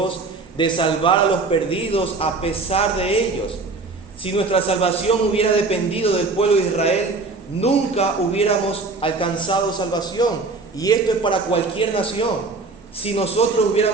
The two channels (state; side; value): quieter; left; 3.8 dB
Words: de salvar a los perdidos a pesar de ellos. Si nuestra salvación hubiera dependido del pueblo de Israel, nunca hubiéramos alcanzado salvación. Y esto es para cualquier nación. Si nosotros